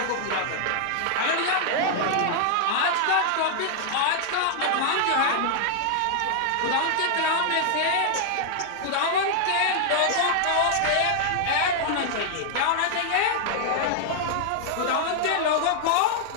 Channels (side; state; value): both; different; correlation -0.01